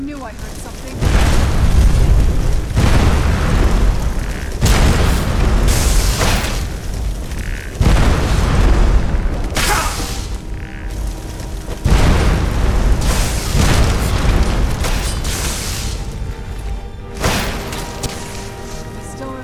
I heard something. I still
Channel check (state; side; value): identical; both; correlation 1.00